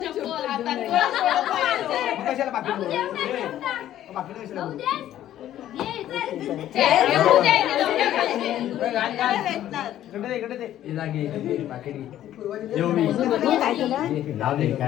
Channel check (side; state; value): right; quieter; 12.3 dB